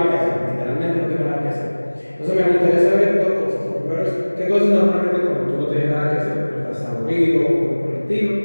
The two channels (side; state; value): both; inverted; correlation -1.00